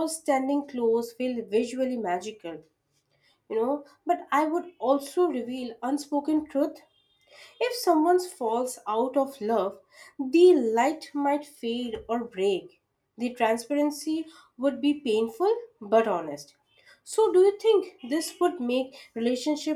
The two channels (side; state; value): both; identical; correlation 1.00